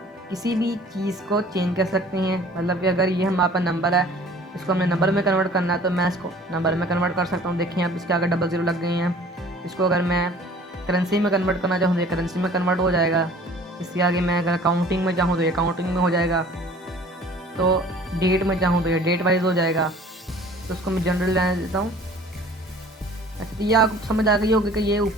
किसी भी चीज़ को चेंज कर सकते हैं। मतलब कि अगर ये हमारे पास नंबर है, इसको हमने नंबर में कन्वर्ट करना है, तो मैं इसको नंबर में कन्वर्ट कर सकता हूँ। देखिए अब इसके आगे 00 लग गई हैं। इसको अगर मैं करेंसी में कन्वर्ट करना चाहूँ तो ये करेंसी में कन्वर्ट हो जाएगा। इसके आगे मैं अगर काउंटिंग में चाहूँ तो ये काउंटिंग में हो जाएगा। तो डेट में चाहूँ तो ये डेट वाइज हो जाएगा। तो उसको मैं जनरल लेने देता हूँ। अच्छा, तो ये आपको समझ आ गई होगी कि ये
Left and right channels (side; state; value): both; normal; correlation 0.49